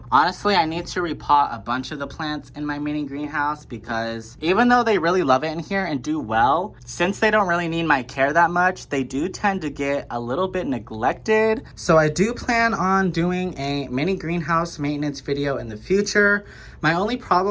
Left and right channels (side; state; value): both; identical; correlation 1.00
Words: Honestly, I need to repot a bunch of the plants in my mini greenhouse because even though they really love it in here and do well, since they don't really need my care that much, they do tend to get a little bit neglected. So I do plan on doing a mini greenhouse maintenance video in the future. My only